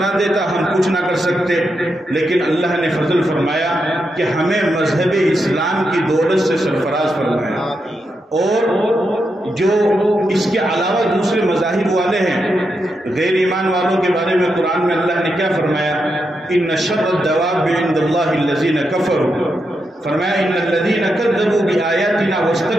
دیتا ہم کچھ نہ کر سکتے۔ لیکن اللہ نے فضل فرمایا کہ ہمیں مذہب اسلام کی دولت سے سرفراز فرمایا۔ اور جو اس کے علاوہ دوسرے مذاہب والے ہیں، غیر ایمان والوں کے بارے میں قرآن میں اللہ نے کیا فرمایا؟ ان شر الدواب عند اللہ الذین کفروا، فرمایا ان الذین کذبوا بآیاتنا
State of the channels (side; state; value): both; normal; correlation 0.84